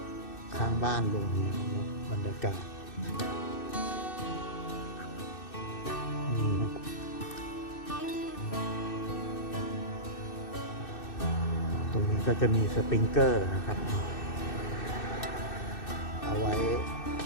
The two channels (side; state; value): right; late; 2.6 ms